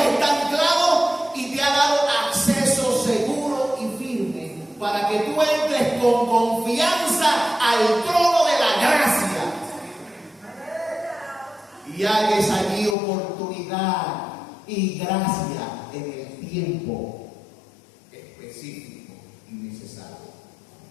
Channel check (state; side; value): drops out; right; at 13.0 s